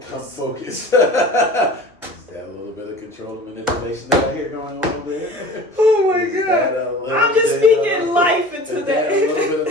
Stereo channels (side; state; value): both; normal; correlation 0.40